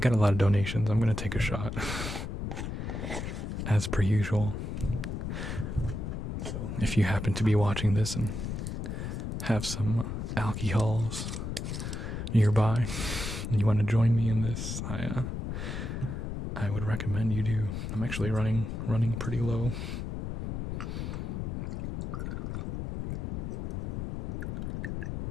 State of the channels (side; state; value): left; noise; rumble, 4 dB below the sound